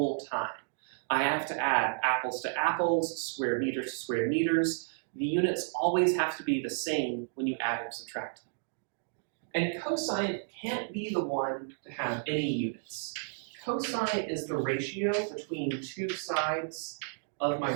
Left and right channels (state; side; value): silent; left; digital silence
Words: time. I have to add apples to apples, square meters to square meters. The units always have to be the same when you add and subtract them. And cosine can't be the one to have any units. Cosine is the ratio between two sides of my